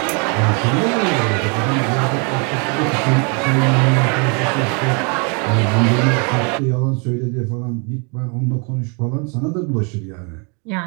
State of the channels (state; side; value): quieter; left; 35.1 dB